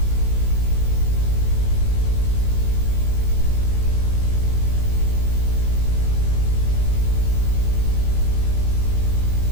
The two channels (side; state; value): right; late; 18 ms